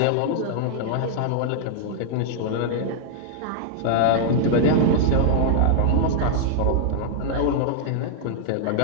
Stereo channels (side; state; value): both; different; correlation -0.01